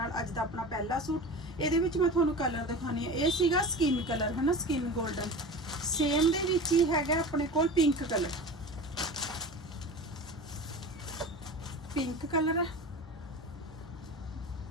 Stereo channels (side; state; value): both; normal; correlation 0.32